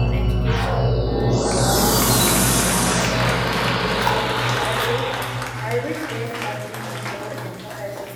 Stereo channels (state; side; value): identical; both; correlation 1.00